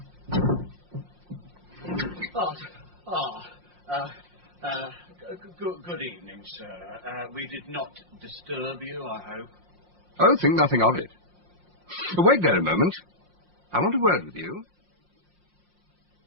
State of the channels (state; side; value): late; left; 5.6 ms